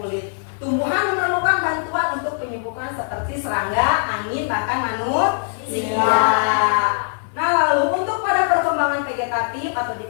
Tumbuhan memerlukan bantuan untuk penyembuhan seperti serangga, angin, bahkan manusia. Nah, lalu untuk pada perkembangan vegetatif atau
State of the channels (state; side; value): silent; right; 59 dB below the other